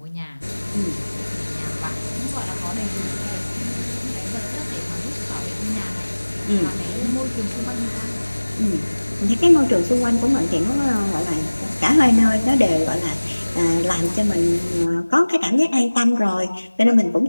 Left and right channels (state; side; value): inverted; both; correlation -1.00